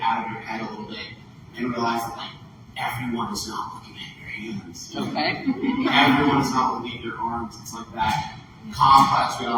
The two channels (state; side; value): identical; both; correlation 1.00